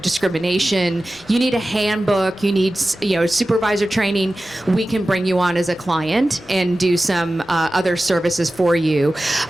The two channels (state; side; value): normal; both; correlation 0.95